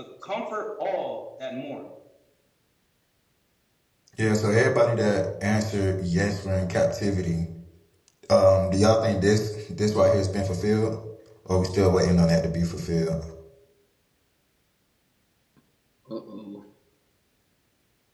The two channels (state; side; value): identical; both; correlation 1.00